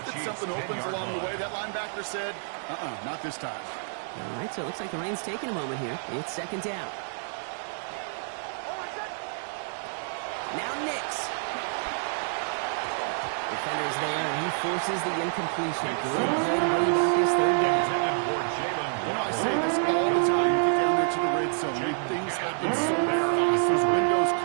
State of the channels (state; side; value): silent; left; digital silence